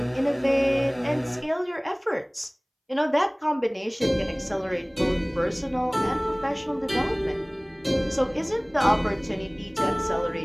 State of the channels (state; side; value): identical; both; correlation 1.00